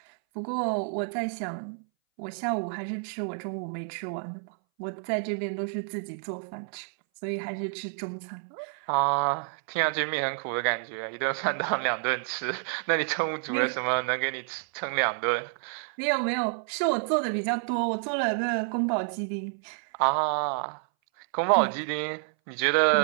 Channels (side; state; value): left; silent; 59 dB below the other